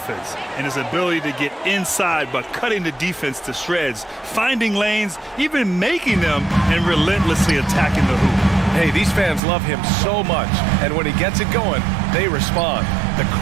and his ability to get inside by cutting the defense to shreds, finding lanes, even making them, and relentlessly attacking the hoop. Hey, these fans love him so much, and when he gets it going, they respond. The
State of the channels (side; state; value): left; drops out; at 9.4 s